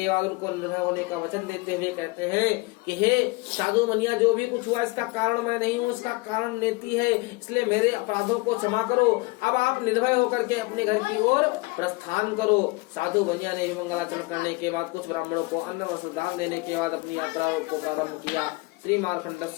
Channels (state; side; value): quieter; right; 24.7 dB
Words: बाद उनको निर्भय होने का वचन देते हुए कहते हैं कि हे साधु मुनिया, जो भी कुछ हुआ इसका कारण मैं नहीं हूँ, इसका कारण नेति है, इसलिए मेरे अपराधों को क्षमा करो। अब आप निर्भय होकर के अपने घर की ओर प्रस्थान करो। साधु मुनिया ने भी मंगलाचरण करने के बाद कुछ ब्राह्मणों को अन्न वस्त्र दान देने के बाद अपनी यात्रा को प्रारंभ किया। श्री मार्कंड